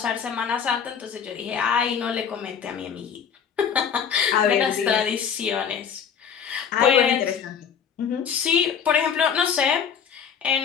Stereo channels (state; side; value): quieter; right; 7.5 dB